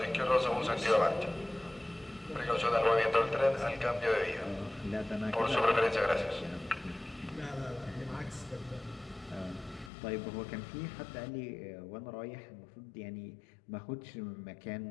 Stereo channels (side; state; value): right; drops out; at 9.9 s